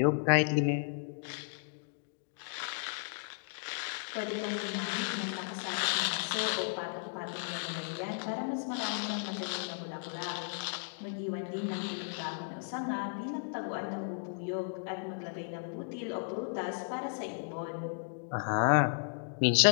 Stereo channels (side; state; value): right; silent; digital silence